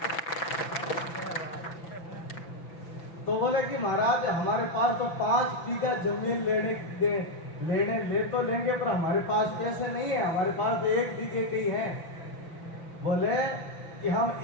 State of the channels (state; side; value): late; right; 5.9 ms